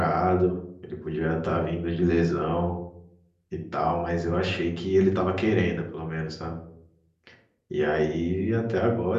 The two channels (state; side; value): identical; both; correlation 1.00